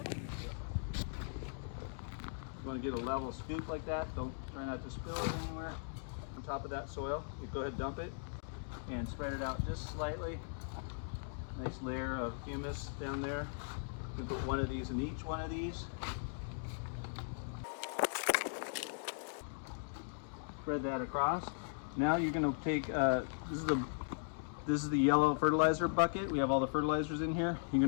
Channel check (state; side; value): silent; right; digital silence